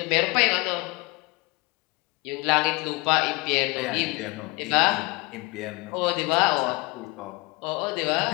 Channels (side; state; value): right; quieter; 25.5 dB